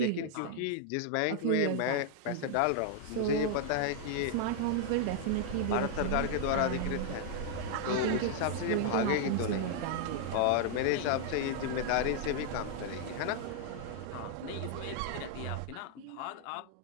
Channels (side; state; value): both; different; correlation -0.01